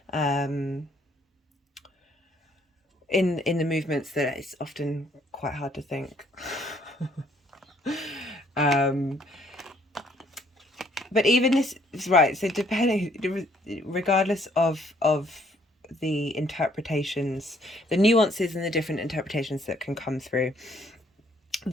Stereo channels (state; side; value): normal; both; correlation 0.65